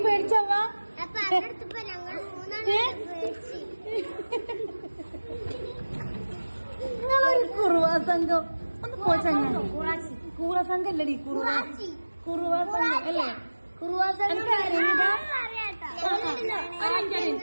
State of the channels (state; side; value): inverted; both; correlation -1.00